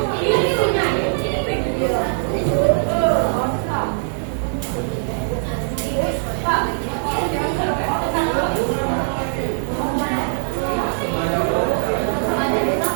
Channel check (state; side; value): silent; left; digital silence